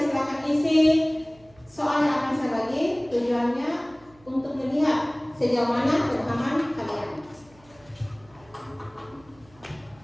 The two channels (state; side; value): noise; right; hum, 28 dB below the sound